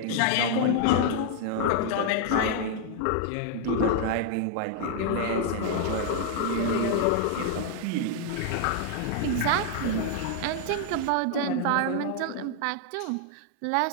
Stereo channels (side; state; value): both; different; correlation 0.00